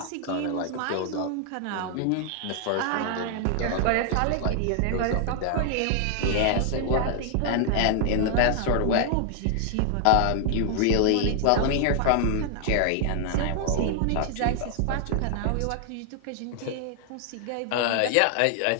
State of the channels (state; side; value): different; both; correlation 0.00